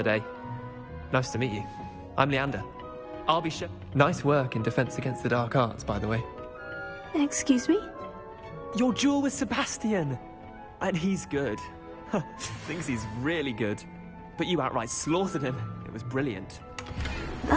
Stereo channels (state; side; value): identical; both; correlation 1.00